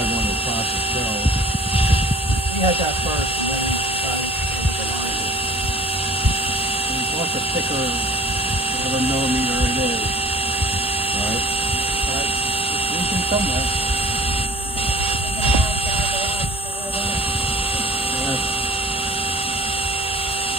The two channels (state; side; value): normal; both; correlation 0.47